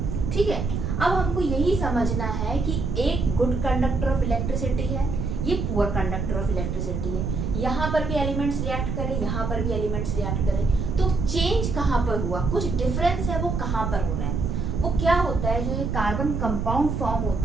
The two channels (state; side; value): noise; right; rumble, 2 dB below the sound